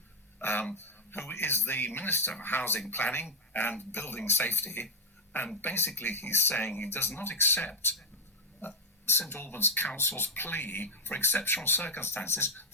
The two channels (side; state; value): both; normal; correlation 0.02